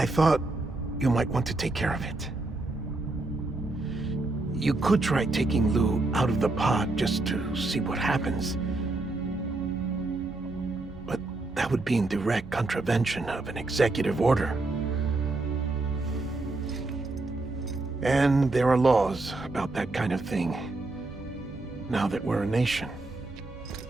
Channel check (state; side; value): quieter; left; 3.1 dB